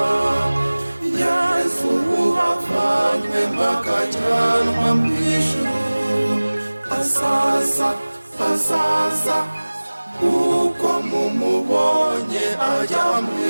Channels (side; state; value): both; inverted; correlation -1.00